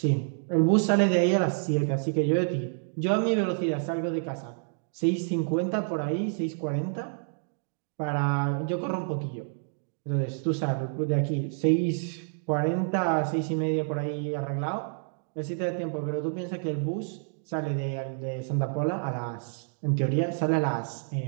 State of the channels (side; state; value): left; silent; digital silence